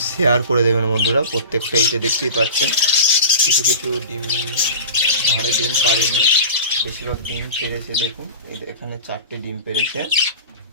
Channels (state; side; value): inverted; both; correlation -0.33